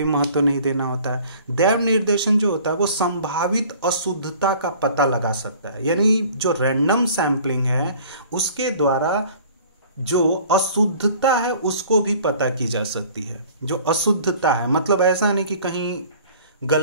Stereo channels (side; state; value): both; inverted; correlation -0.50